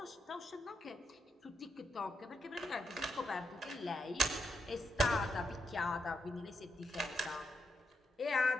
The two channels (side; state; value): both; normal; correlation 0.82